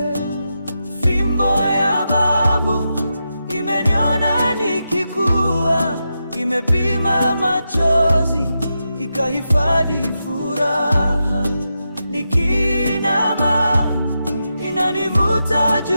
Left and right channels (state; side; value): inverted; both; correlation -0.87